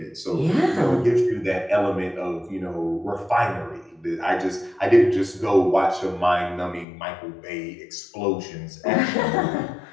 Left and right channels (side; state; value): right; drops out; at 6.9 s